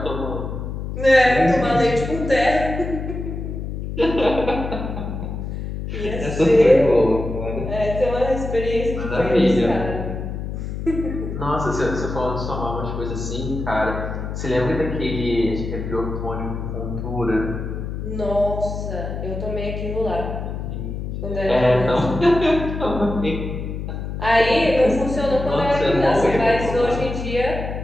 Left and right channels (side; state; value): left; noise; hum, 5 dB below the sound